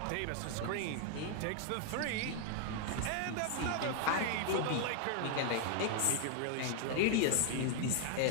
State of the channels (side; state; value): both; different; correlation 0.00